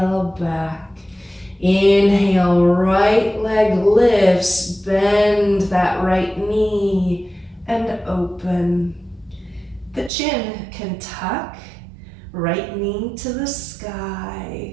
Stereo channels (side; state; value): left; drops out; at 10.1 s